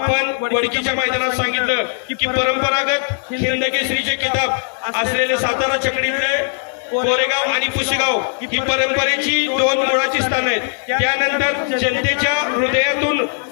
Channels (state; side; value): silent; right; 56 dB below the other